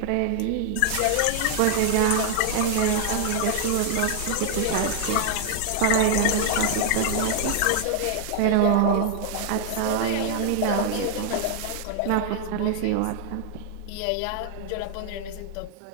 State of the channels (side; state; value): both; different; correlation 0.00